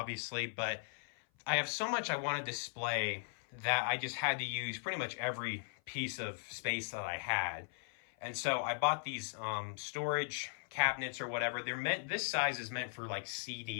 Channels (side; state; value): right; silent; 52 dB below the other